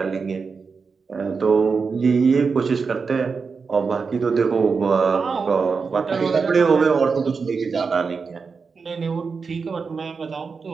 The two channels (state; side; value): quieter; left; 5.1 dB